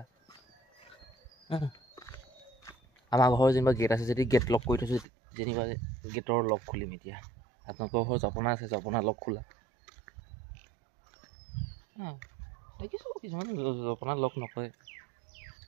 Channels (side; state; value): left; drops out; at 5.1 s